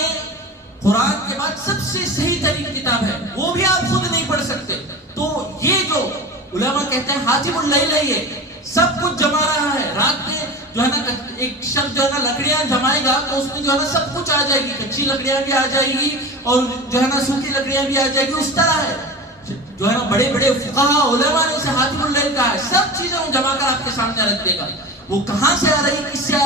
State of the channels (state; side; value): normal; both; correlation 0.31